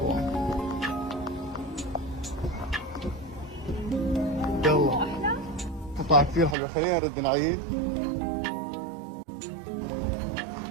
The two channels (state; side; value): drops out; left; at 6.6 s